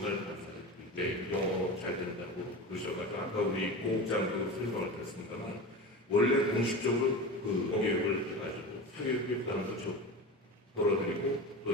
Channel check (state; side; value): normal; both; correlation 0.28